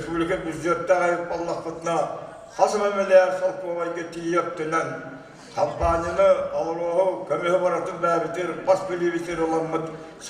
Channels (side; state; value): both; identical; correlation 1.00